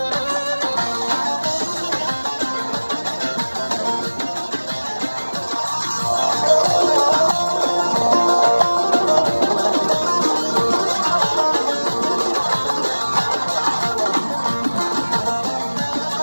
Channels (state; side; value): inverted; both; correlation -1.00